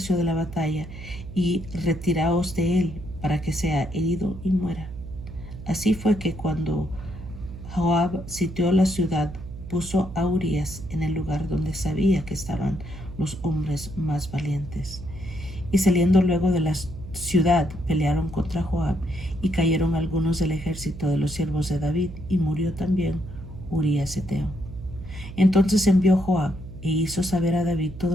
de la batalla, y retiraos de él, para que sea herido y muera. Así fue que cuando Joab sitió la ciudad, puso a Urías en el lugar donde sabía que estaban los hombres más valientes. Y saliendo luego de la ciudad, pelearon contra Joab, y cayeron algunos del ejército de los siervos de David, y murió también Urías Eteo. Entonces envió Joab e hizo saber a David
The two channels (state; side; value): noise; right; hum, 12 dB below the sound